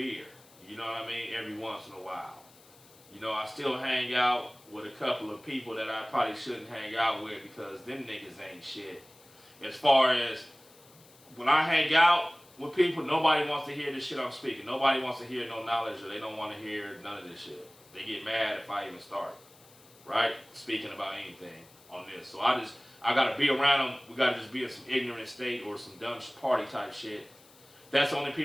you know what I mean, every once in a while. I still hang out with a couple of people that I probably shouldn't hang out with because them niggas ain't shit. As far as when I hang out with people, nobody wants to hear this shit I'm speaking. Nobody wants to hear no knowledge or they don't want to hear none of this shit. They get mad if I even start, right? Speaking about anything on this. So I got to be around them. We got to just be in some ignorant state or some dumb party type shit. That's the only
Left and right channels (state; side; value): noise; left; hiss, 25 dB below the sound